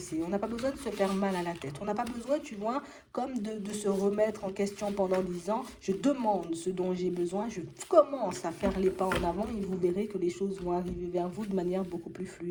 on n'a pas besoin de se faire mal à la tête, on n'a pas besoin, tu vois, comme de se remettre en question pendant 10 ans. Je demande ce dont j'ai besoin, je commence à faire les pas en avant et vous verrez que les choses vont arriver vers vous de manière beaucoup plus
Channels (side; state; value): both; identical; correlation 1.00